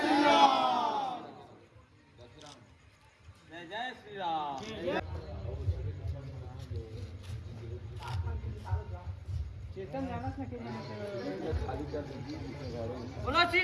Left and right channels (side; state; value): both; identical; correlation 1.00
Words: राम। जय श्री राम। चेतन जाना था कि बोलो श्री